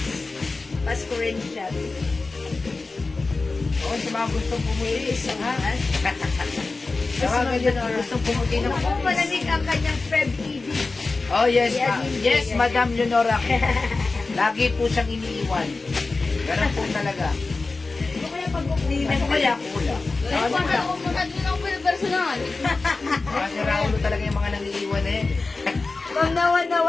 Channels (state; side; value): quieter; right; 3.7 dB